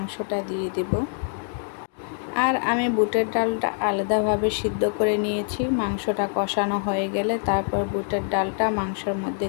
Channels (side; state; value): right; silent; 62 dB below the other